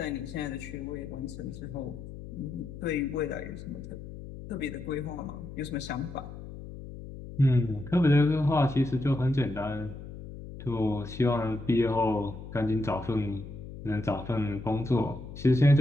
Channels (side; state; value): left; noise; hum, 12 dB below the sound